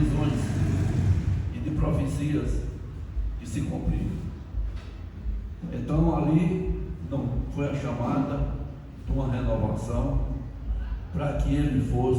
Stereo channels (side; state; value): both; identical; correlation 1.00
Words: e de profecias que se cumpriram. Então ali não foi a chamada de uma renovação para que ele